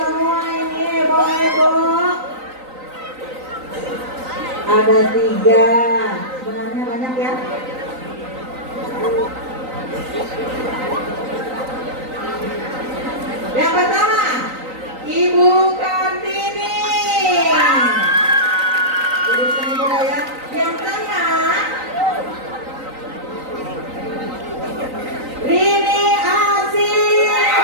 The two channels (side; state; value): left; late; 3.9 ms